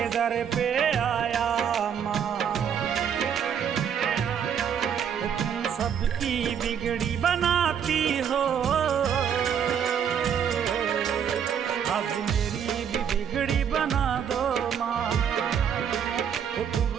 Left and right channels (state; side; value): quieter; left; 8.1 dB